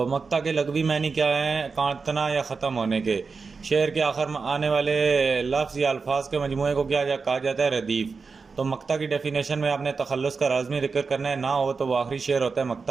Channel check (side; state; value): left; quieter; 4.8 dB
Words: मक्ता के लगवी मानी क्या हैं? काटना या ख़त्म होने के। शेर के आखिर में आने वाले लफ्ज़ या अल्फाज के मजमूए को क्या कहा जाता है? रदीफ़। तो मक्ता की डेफिनेशन में आपने तखल्लुस का लाज़मी जिक्र करना है, ना हो तो वो आखिरी शेर होता है,